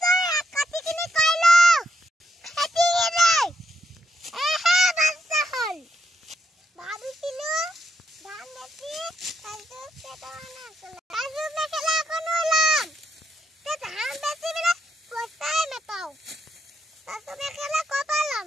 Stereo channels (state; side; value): normal; both; correlation 0.78